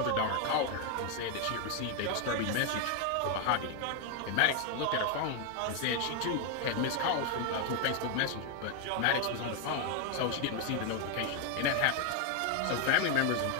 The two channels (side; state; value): both; different; correlation 0.01